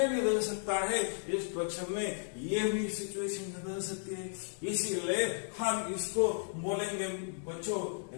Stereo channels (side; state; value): right; silent; 55 dB below the other